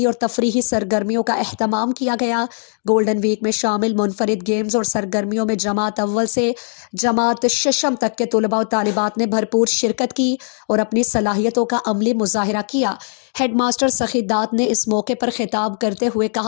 اور تفریحی سرگرمیوں کا اہتمام کیا گیا۔ گولڈن ویک میں شامل منفرد گیمز اور سرگرمیوں میں جماعت اول سے جماعت ششم تک کے طلباء و طالبات نے بھرپور شرکت کی اور اپنی صلاحیتوں کا عملی مظاہرہ کیا۔ ہیڈ ماسٹر سخی دات نے اس موقع پر خطاب کرتے ہوئے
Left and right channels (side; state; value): right; silent; digital silence